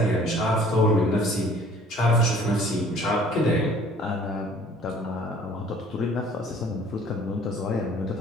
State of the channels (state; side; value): normal; both; correlation 0.53